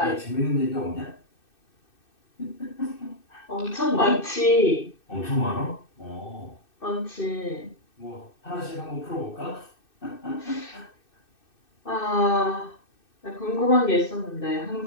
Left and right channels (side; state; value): right; late; 2.6 ms